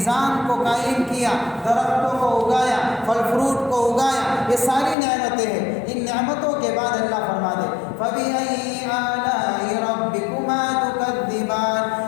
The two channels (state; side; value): drops out; right; at 5.0 s